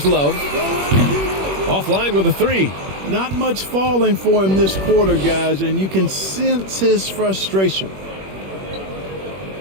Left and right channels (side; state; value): left; late; 21 ms